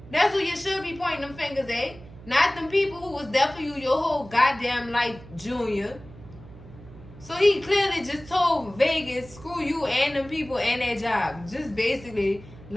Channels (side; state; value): right; noise; hum, 18 dB below the sound